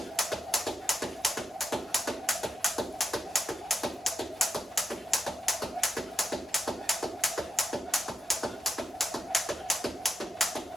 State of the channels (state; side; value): normal; both; correlation 0.84